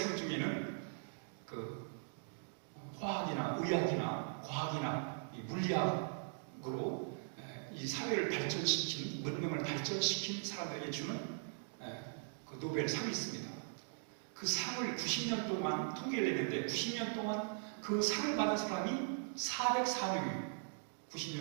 중에는 그 화학이나 의학이나 과학이나 이 물리학으로 이 사회를 발전시킨, 문명을 발전시킨 사람들에게 주는 그 노벨상이 있습니다. 그 상을 90년 동안 통계를 냈는데 90년 동안 그 상을 받은 사람이 404명이에요.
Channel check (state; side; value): silent; left; digital silence